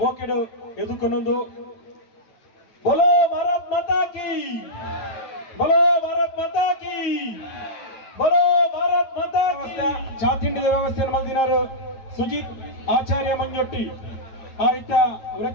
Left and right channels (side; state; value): right; late; 9.2 ms